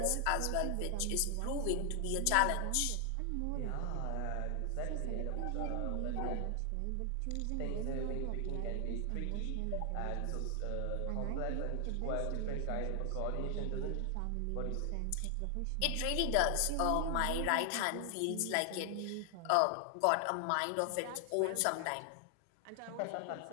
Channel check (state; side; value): different; both; correlation 0.00